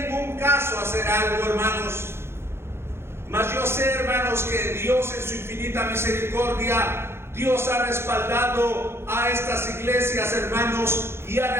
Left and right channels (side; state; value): left; late; 0.12 ms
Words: ningún caso hacer algo, hermanos. Mas yo sé, hermanos, que Dios en su infinita misericordia, Dios ha respaldado a estas iglesias, hermanos, y ha